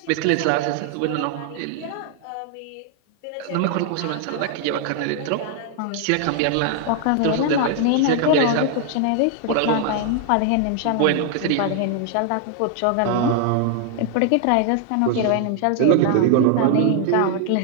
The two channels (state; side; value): different; both; correlation 0.00